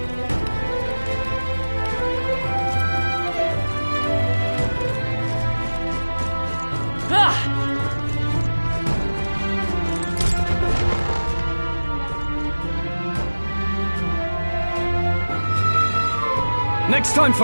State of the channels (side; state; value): both; inverted; correlation -1.00